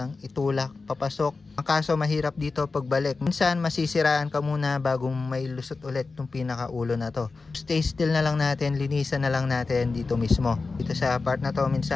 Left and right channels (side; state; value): right; quieter; 4.0 dB